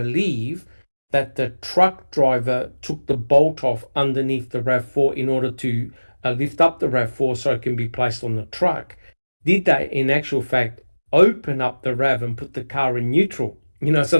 that the truck driver took the bolt off underneath the RAV4 in order to lift up the RAV4 so it can be placed on the truck. Did they, in actual fact, open up the RAV and put the car in neutral, so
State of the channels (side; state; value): both; inverted; correlation -1.00